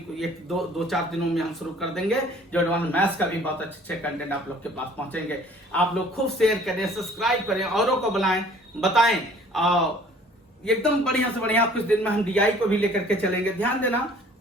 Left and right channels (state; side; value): normal; both; correlation 0.53